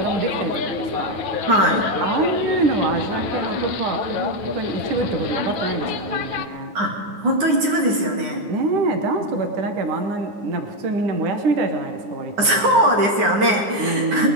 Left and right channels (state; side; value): late; left; 9.7 ms